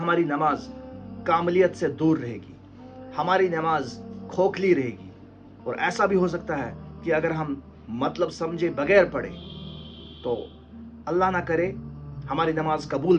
नमाज कामलियत से दूर रहेगी, हमारी नमाज खोखली रहेगी। और ऐसा भी हो सकता है कि अगर हम मतलब समझे बगैर पढ़े तो अल्लाह ना करे हमारी नमाज कबूल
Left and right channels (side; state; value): both; identical; correlation 1.00